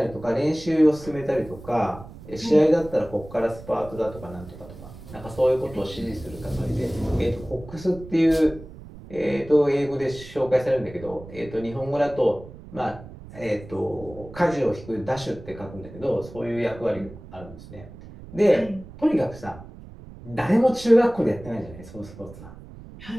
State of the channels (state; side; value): noise; right; rumble, 16 dB below the sound